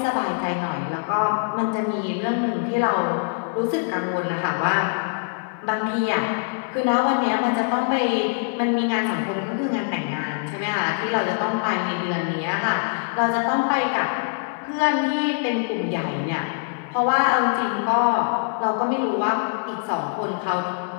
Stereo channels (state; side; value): silent; right; digital silence